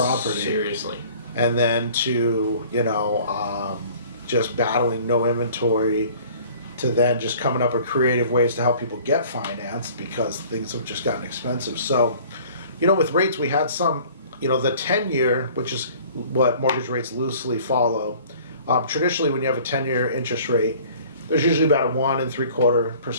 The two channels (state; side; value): inverted; both; correlation -0.50